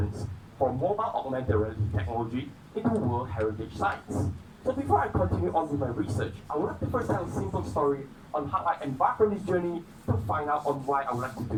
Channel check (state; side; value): identical; both; correlation 1.00